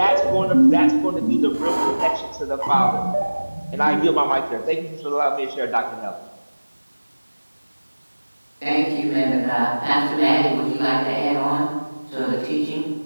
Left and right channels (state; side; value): inverted; both; correlation -1.00